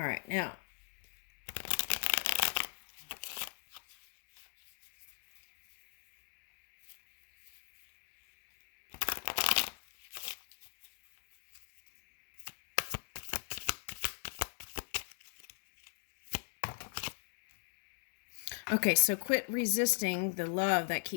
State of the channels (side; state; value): right; silent; digital silence